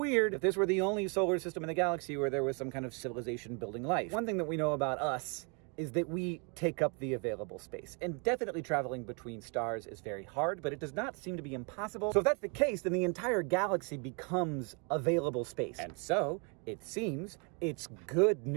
if this were the only solar system in the galaxy where there was some kind of civilization building life. One thing that we know about us is that we take up the available space. And definitely traveling between stars is very hard, but it does not seem to be impossible. So if that's the case, then the entire galaxy becomes available space. And so, it seems, it's good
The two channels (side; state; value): left; quieter; 34.9 dB